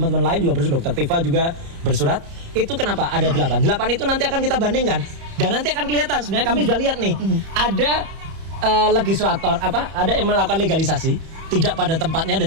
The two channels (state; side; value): late; left; 30 ms